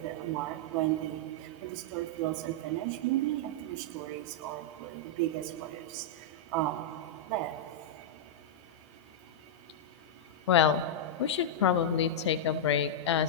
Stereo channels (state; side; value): normal; both; correlation -0.06